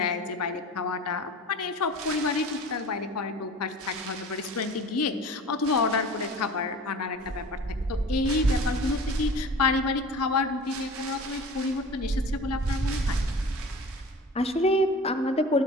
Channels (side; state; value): both; normal; correlation 0.40